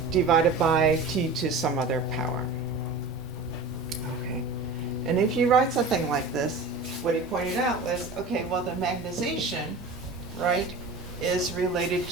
divided by T to some other power. Okay, and if you write something like this, what he pointed out was, okay, well, the magnetization, right, is related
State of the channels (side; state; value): left; quieter; 3.6 dB